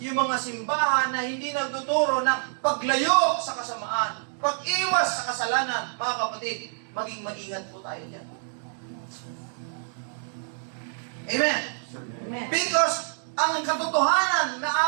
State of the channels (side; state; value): left; silent; digital silence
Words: mga simbahan na hindi nagtuturo ng paglayo sa kasamaan, pag-iwas sa kasalanan, mga kapatid, maging maingat po tayo dyan. Amen? Amen. Because ang katotohanan